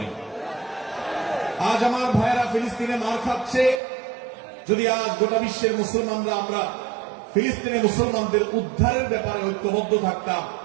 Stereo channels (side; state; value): left; drops out; at 3.8 s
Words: আজ আমার ভাইয়েরা ফিলিস্তিনে মার খাচ্ছে, যদি আজ গোটা বিশ্বের মুসলমানরা আমরা ফিলিস্তিনের মুসলমানদের উদ্ধারের ব্যাপারে ঐক্যবদ্ধ থাকতাম,